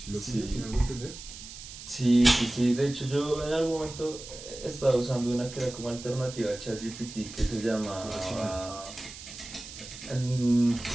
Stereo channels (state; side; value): noise; right; hiss, 13 dB below the sound